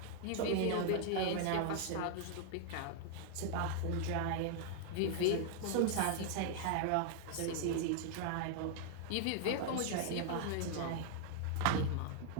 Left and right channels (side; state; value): both; different; correlation 0.00